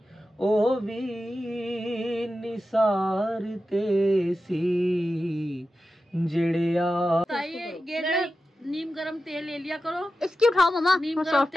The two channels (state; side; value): normal; both; correlation 0.92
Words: ओ भी निसार तेसी जड़िया। ये ना नीम गरम तेल ले लिया करो, इसकी उठाओ मम्मा। नीम गरम